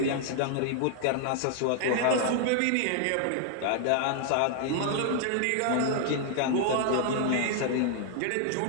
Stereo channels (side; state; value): both; different; correlation 0.00